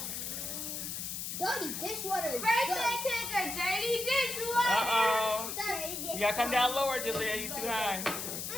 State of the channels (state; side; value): noise; left; hiss, 5 dB below the sound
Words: Dirty dishwater is Birthday cake or dirty dishwater. Uh-oh. Dirty dishwater. You gotta come down lower, Julia. You too high.